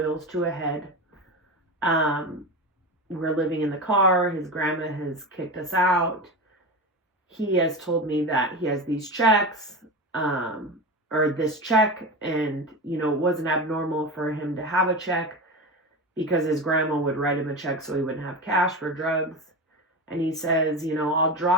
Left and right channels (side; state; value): both; normal; correlation 0.24